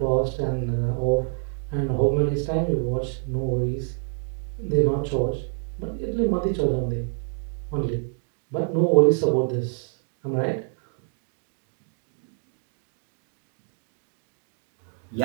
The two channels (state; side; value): silent; left; digital silence